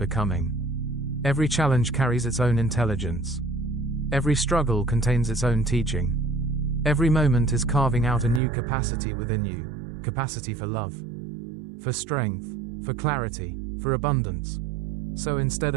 Every challenge carries its own intelligence. Every struggle contains its own teaching. Every moment is carving out a new capacity within you, capacity for love, for strength, for clarity, for abundance. So instead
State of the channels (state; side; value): drops out; left; at 8.4 s